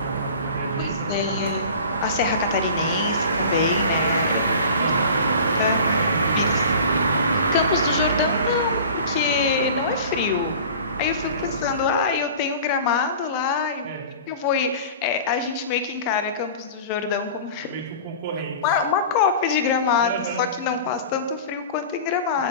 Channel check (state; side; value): inverted; both; correlation -0.39